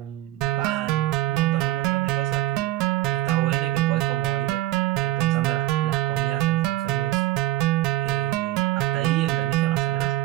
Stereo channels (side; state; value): left; quieter; 15.5 dB